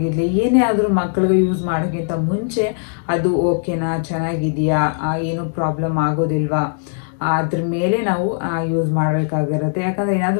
ಏನೇ ಆದರೂ ಮಕ್ಕಳಿಗೆ ಯೂಸ್ ಮಾಡೋಕ್ಕಿಂತ ಮುಂಚೆ ಅದು ಓಕೆನಾ, ಚೆನ್ನಾಗಿದೆಯಾ, ಏನೂ ಪ್ರಾಬ್ಲಮ್ ಆಗೋದಿಲ್ವಾ ಅದ್ರ ಮೇಲೆ ನಾವು ಯೂಸ್ ಮಾಡಬೇಕಾಗಿರುತ್ತೆ. ಯಾಕಂದರೆ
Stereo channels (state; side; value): silent; right; digital silence